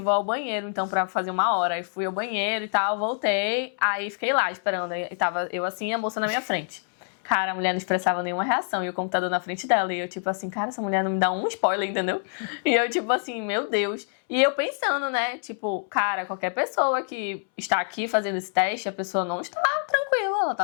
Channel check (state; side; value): silent; right; 61 dB below the other